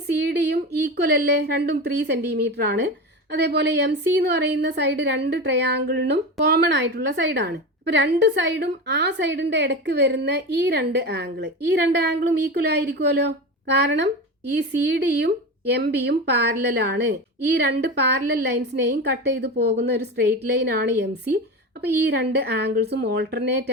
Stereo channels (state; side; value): normal; both; correlation 0.25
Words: സി ഡിയും ഈക്വൽ അല്ലേ, രണ്ടും 3 സെന്റിമീറ്റർ ആണ്. അതേപോലെ എം സി എന്ന് പറയുന്ന സൈഡ് രണ്ട് ട്രയാങ്കിളിനും കോമൺ ആയിട്ടുള്ള സൈഡാണ്. അപ്പോൾ രണ്ട് സൈഡും ആ സൈഡിന്റെ ഇടയ്ക്ക് വരുന്ന ഈ രണ്ട് ആംഗിളും ഈക്വൽ ആയിരിക്കുമല്ലോ. കാരണം ഈ സി ഡിയും എം ബിയും പാരലലാണ്. ഈ രണ്ട് പാരലൽ ലൈൻസിനെയും കട്ട് ചെയ്ത് പോകുന്ന ഒരു സ്ട്രെയിറ്റ് ലൈൻ ആണ് എം സി. അപ്പോൾ ഈ രണ്ട് ആംഗിൾസും ഓൾട്ടർനേറ്റ്